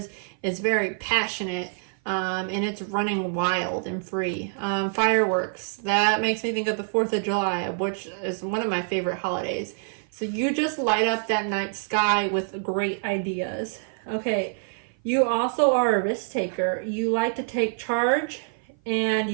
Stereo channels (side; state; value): left; silent; 55 dB below the other